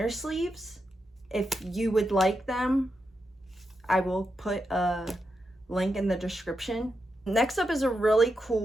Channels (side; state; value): both; normal; correlation 0.86